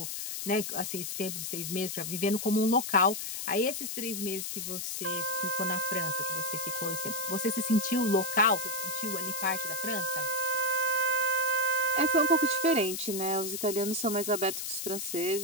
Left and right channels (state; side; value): noise; left; hiss, 4 dB below the sound